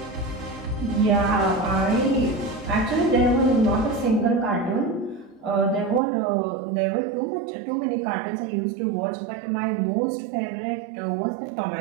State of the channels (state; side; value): drops out; left; at 6.0 s